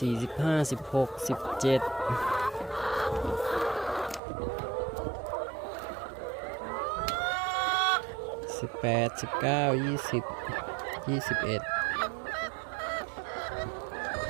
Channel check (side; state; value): left; drops out; at 4.2 s